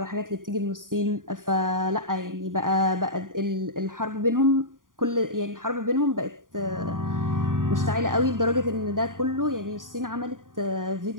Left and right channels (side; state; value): left; late; 0.90 ms